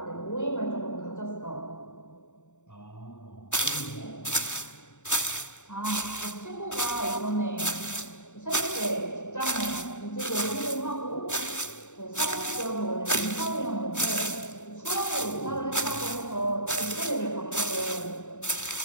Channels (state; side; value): late; right; 0.84 ms